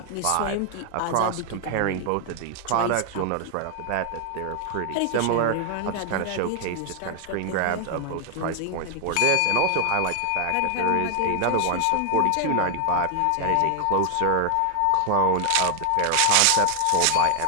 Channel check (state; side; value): different; both; correlation 0.00